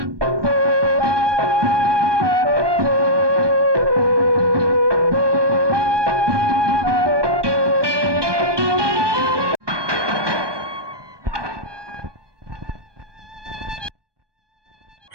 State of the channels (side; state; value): left; late; 1.2 ms